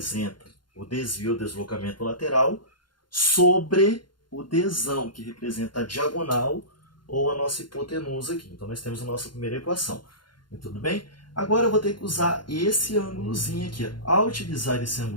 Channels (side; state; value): right; late; 0.71 ms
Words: o desvio, o deslocamento lateral, sobre o Dzão, que representa a diagonal ou a nossa hipotenusa aqui. Então nós temos a nossa primeira equação. Tudo bem? Agora eu vou ter que usar esse ângulozinho aqui. Ao utilizar esse